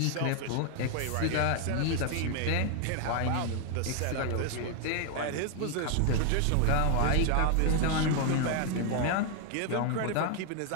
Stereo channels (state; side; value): different; both; correlation 0.00